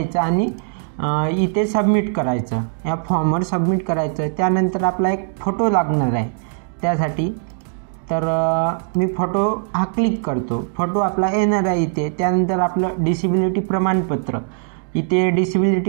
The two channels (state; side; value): silent; left; 66 dB below the other